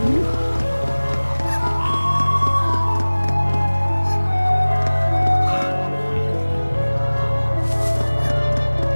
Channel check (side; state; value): both; inverted; correlation -1.00